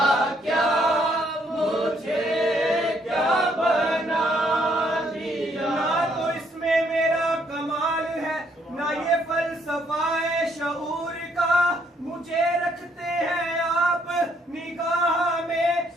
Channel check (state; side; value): normal; both; correlation 0.70